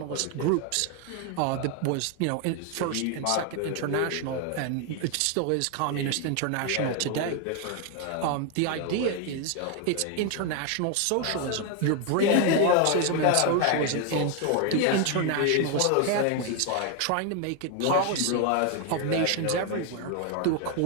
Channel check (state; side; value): different; both; correlation 0.01